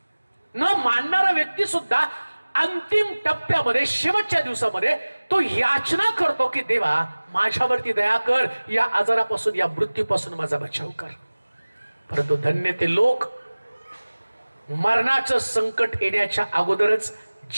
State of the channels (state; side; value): inverted; both; correlation -1.00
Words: न मानणारा व्यक्ती सुद्धा अंतिम टप्प्यामध्ये, शेवटच्या दिवसामध्ये तो याचना करतो की देवा माझ्यावरती दया कर, या आजारापासून, या मृत्यूपासून माझा बचाव कर. परंतु धन्य ते लोक मरणाचं संकट येण्याच्या अगोदरच